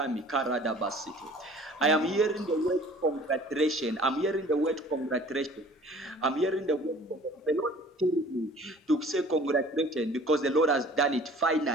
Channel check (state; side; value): normal; both; correlation 0.49